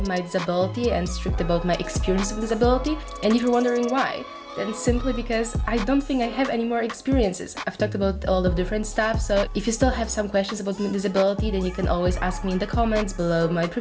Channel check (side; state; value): both; identical; correlation 1.00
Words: my disability and strict about my experience with disability. And if you're wondering why, then simply because I don't think I have any more experiences. I've talked about a lot of different stuff, so if you still have some questions about my disability, then you can always ask me in the comments below my